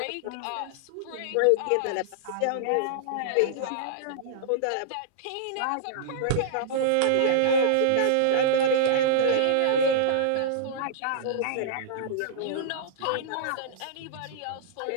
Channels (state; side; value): different; both; correlation -0.02